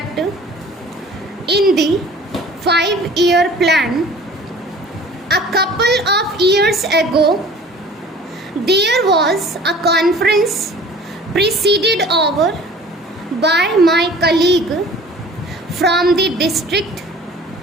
in the 5-year plan. A couple of years ago, there was a conference presided over by my colleague from the district,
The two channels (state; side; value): normal; both; correlation 0.46